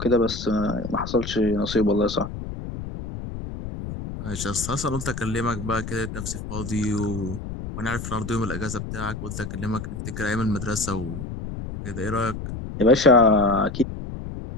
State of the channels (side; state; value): left; noise; rumble, 8 dB below the sound